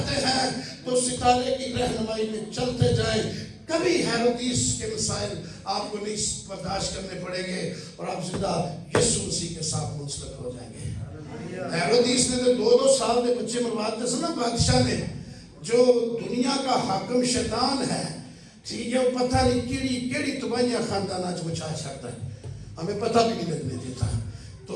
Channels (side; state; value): both; identical; correlation 1.00